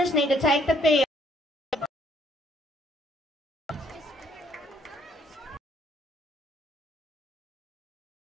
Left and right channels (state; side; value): normal; both; correlation 0.65